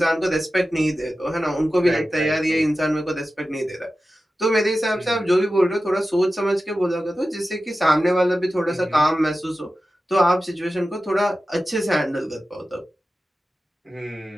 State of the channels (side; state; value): both; normal; correlation 0.94